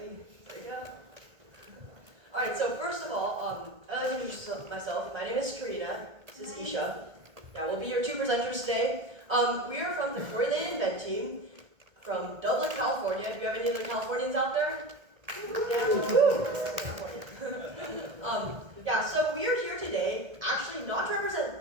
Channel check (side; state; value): left; late; 1.8 ms